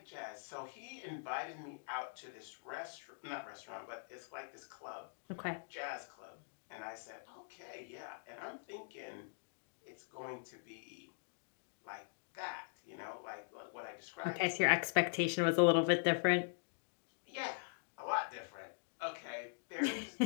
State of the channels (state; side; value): silent; right; digital silence